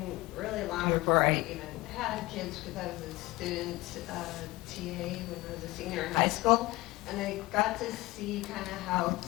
really long before I even had kids because I was a student TA when I was a senior in high school, and I got to see kind of how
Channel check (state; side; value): quieter; right; 20.5 dB